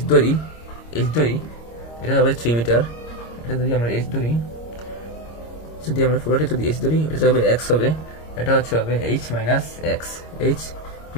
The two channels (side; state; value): right; late; 26 ms